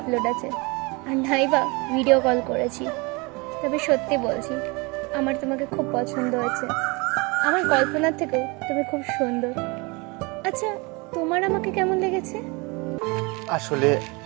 আছে, আর নাই বা ভিডিও কল করেছি। তবে সত্যি বলছি, আমার তোমাকে খুব পছন্দ হয়েছে। আমার কল্পনার থেকেও তুমি খুব সুন্দর। আচ্ছা, তোমার আমাকে কেমন লেগেছে? আসলে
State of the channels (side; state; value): left; quieter; 27.6 dB